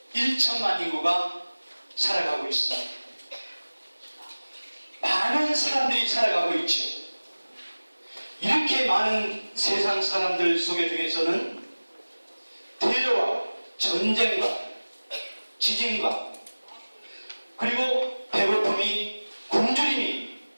1천만 인구가 살아가고 있습니다. 많은 사람들이 살아가고 있죠. 이렇게 많은 세상 사람들 속에 중에서는 테러와 전쟁과 지진과 그리고 배고픔이 굶주림이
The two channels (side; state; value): both; inverted; correlation -1.00